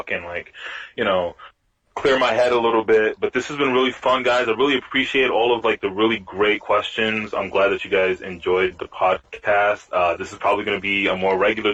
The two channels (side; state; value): both; identical; correlation 1.00